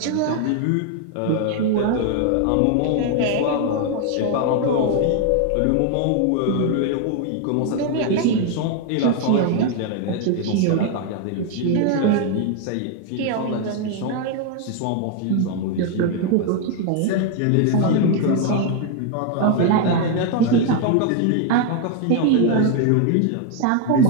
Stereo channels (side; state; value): both; different; correlation 0.01